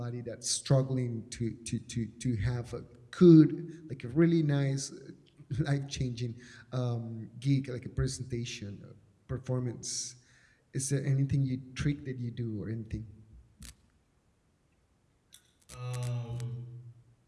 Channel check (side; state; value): both; identical; correlation 1.00